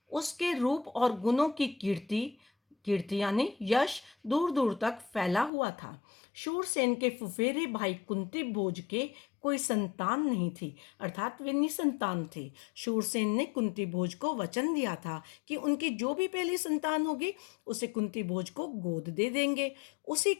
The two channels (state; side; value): drops out; right; at 5.5 s